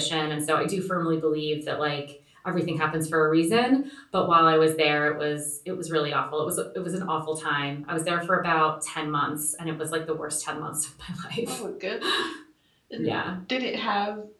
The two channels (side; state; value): both; identical; correlation 1.00